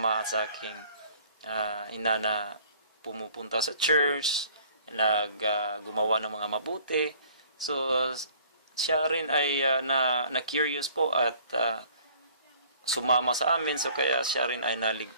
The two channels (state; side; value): inverted; both; correlation -0.55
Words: at sa aking ina na pumupunta sa church, gumawa ng mga mabuti. So, siya rin ay na-curious po at sumama sa amin, so kaya siya rin ay